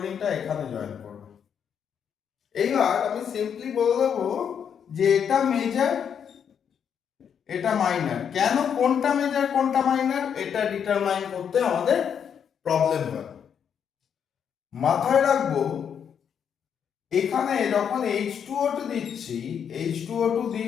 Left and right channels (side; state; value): right; quieter; 7.8 dB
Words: এখানে জয়েন করবে। এইবার আমি সিম্পলি বলে দেবো যে এটা মেজর, এটা মাইনার। কেন কোনটা মেজর কোনটা মাইনার এটা ডিটারমাইন করতে আমাদের প্রবলেম হয়। মাথায় রাখবো এখানে যখন H2O2 দিচ্ছি, H2O2